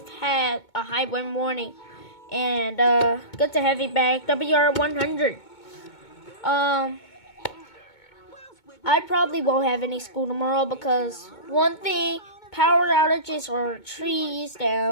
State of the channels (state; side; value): late; right; 2.2 ms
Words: had a high wind warning, and good to have you back, WR100. I probably won't have any school tomorrow because one thing, power outages or trees